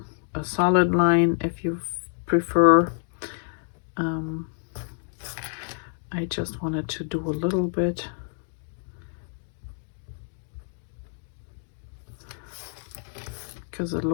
a solid line if you prefer. I just wanted to do a little bit because it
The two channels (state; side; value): silent; right; 59 dB below the other